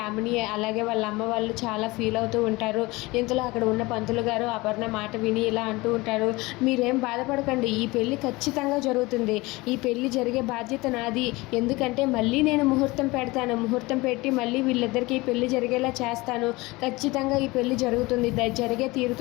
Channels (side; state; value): right; quieter; 22.3 dB